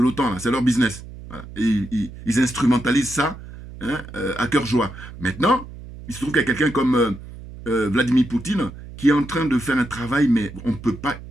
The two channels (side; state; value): right; noise; hum, 14 dB below the sound